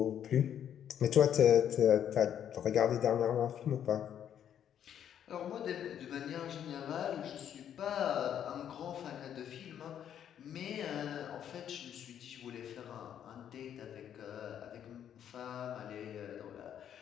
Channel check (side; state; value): right; quieter; 9.6 dB